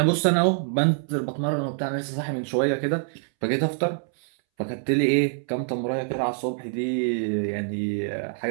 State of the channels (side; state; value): left; silent; 61 dB below the other